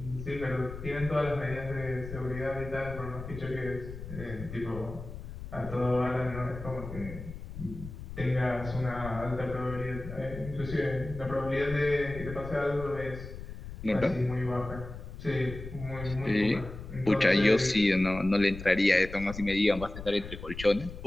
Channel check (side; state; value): left; noise; rumble, 11 dB below the sound